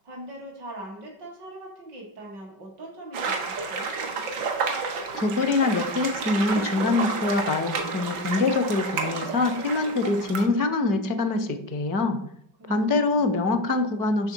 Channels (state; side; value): late; left; 5.2 ms